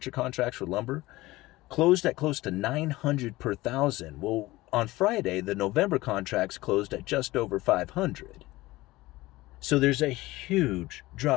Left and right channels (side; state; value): right; quieter; 19.1 dB